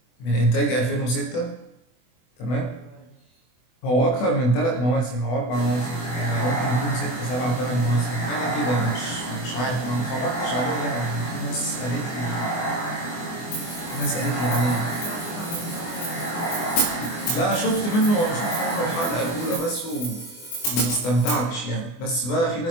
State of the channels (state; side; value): late; right; 24 ms